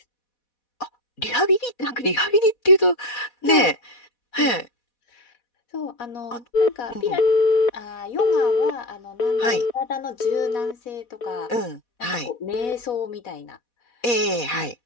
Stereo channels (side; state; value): right; late; 4.2 ms